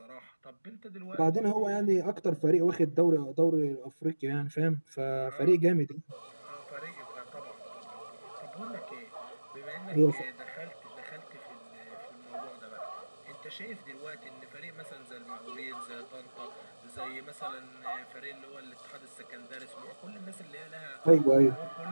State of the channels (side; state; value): both; inverted; correlation -1.00